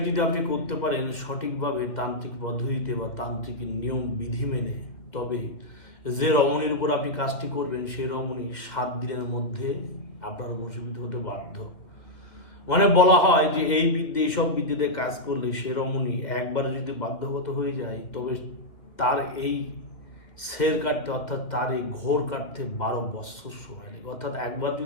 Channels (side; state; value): right; late; 2.1 ms